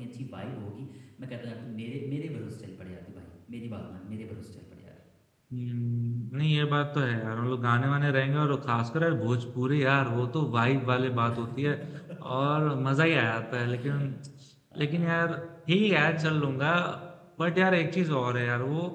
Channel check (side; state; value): both; identical; correlation 1.00